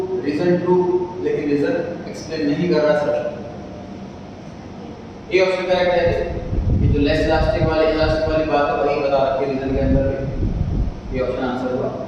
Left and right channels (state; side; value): identical; both; correlation 1.00